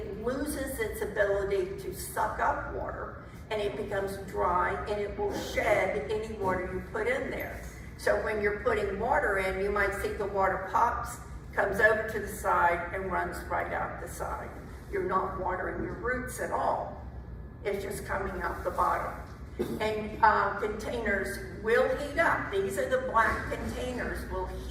loses its ability to suck up water, and it becomes dry, and it will shed any water you put in there. So when you're putting water in, you might see the water pops, comes over to the side, and runs right out the side. You're not watering your roots at all. It's just coming out the bottom. And containers will heat up. These are the black containers, will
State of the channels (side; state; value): both; identical; correlation 1.00